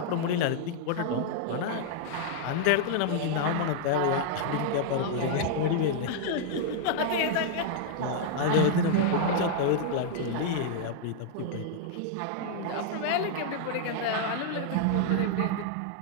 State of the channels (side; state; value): both; different; correlation -0.01